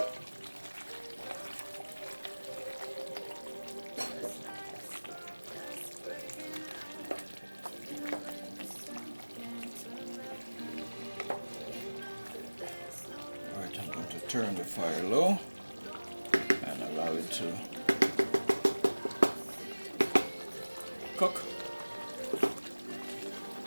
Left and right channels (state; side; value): inverted; both; correlation -1.00